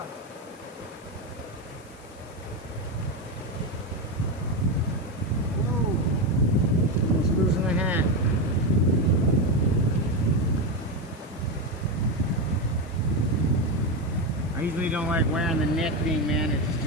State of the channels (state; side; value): noise; left; hiss, 26 dB below the sound